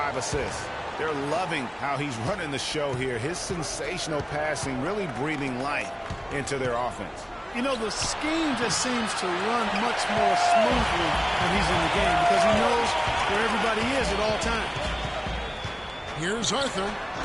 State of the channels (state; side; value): identical; both; correlation 1.00